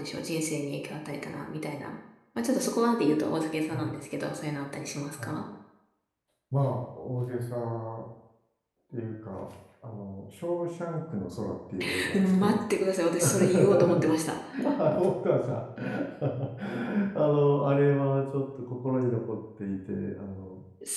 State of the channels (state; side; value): identical; both; correlation 1.00